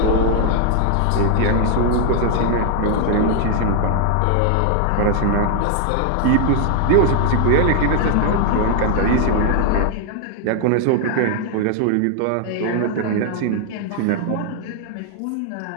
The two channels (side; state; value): both; different; correlation 0.00